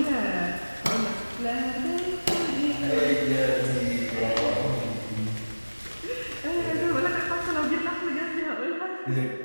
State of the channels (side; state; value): both; inverted; correlation -1.00